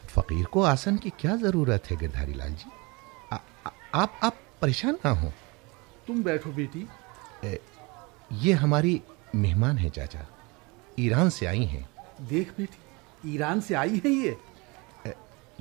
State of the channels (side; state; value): left; quieter; 26.9 dB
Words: फकीर को आसन की क्या जरूरत है गिरधारी लाल जी? आप परेशान ना हो। तुम बैठो बेटी। ये हमारी मेहमान है चाचा, ईरान से आई हैं। देख बेटी, ईरान से आई है